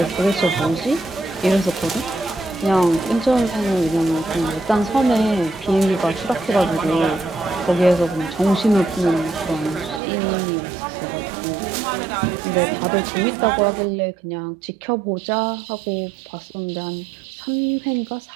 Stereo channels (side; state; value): left; drops out; at 10.0 s